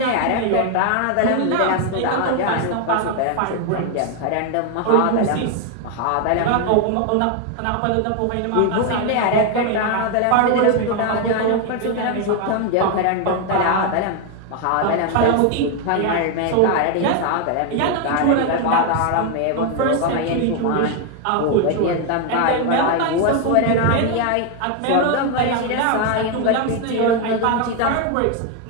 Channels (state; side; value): different; both; correlation 0.01